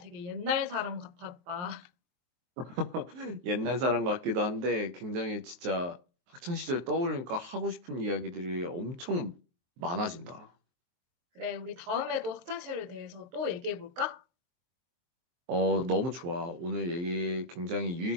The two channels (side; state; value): left; late; 23 ms